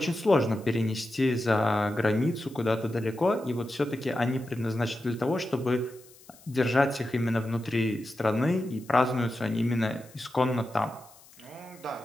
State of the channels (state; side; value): noise; left; hiss, 24 dB below the sound